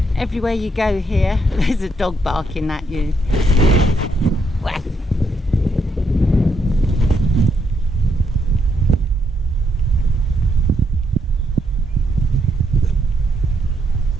Everywhere you go here, there's a dog barking at you.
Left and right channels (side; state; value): both; normal; correlation 0.76